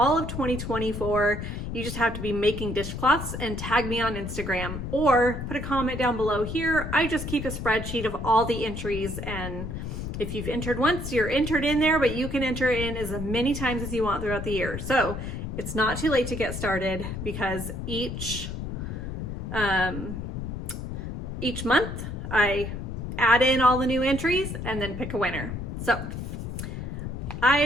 of 2024. You just have to be making dishcloths and tag me on Instagram or put a comment down below here. I just keep a spreadsheet of all the entries, and if you've entered once, you're entered in there, but you can enter in as many times as you want throughout the year. So it's not too late to get started because each month I add in all the new entries and then pick a winner. So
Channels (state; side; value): noise; left; rumble, 6 dB below the sound